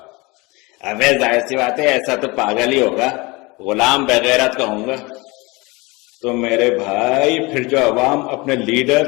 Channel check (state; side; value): quieter; right; 24.9 dB